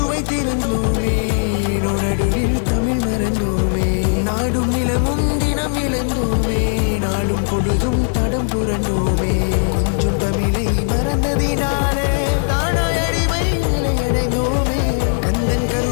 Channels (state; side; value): silent; right; digital silence